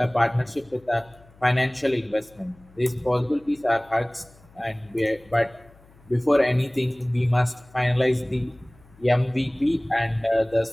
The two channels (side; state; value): left; noise; hum, 27 dB below the sound